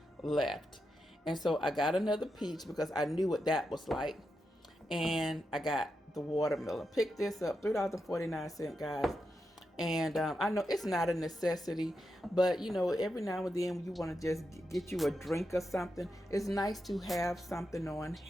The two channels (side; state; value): both; normal; correlation 0.86